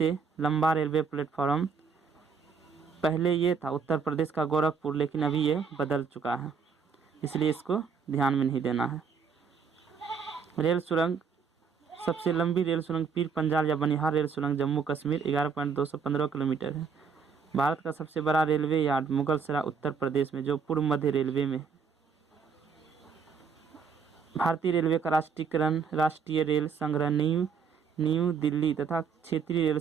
लंबा रेलवे प्लेटफॉर्म पहले ये था उत्तर प्रदेश का गोरखपुर, लेकिन अभी ये बदल चुका है, इसलिए इसको ध्यान में नहीं देना है। रेल सुरंग, सबसे लंबी रेल सुरंग पीर पंजाल या बनिहार रेल सुरंग जम्मू कश्मीर 11.215 किलोमीटर है। भारत का सबसे बड़ा रेलवे यार्ड मुगलसराय उत्तर प्रदेश में, जो पूर्व मध्य रेलवे में है। भारतीय रेलवे का राष्ट्रीयकरण राष्ट्रीय रेल संग्रह न्यू दिल्ली तथा क्षेत्रीय रेल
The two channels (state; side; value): quieter; left; 5.9 dB